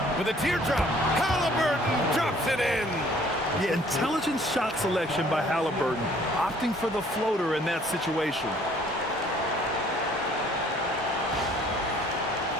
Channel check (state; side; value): normal; both; correlation 0.58